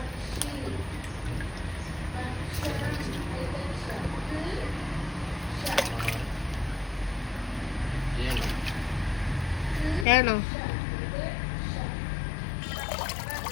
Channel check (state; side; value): drops out; right; at 10.1 s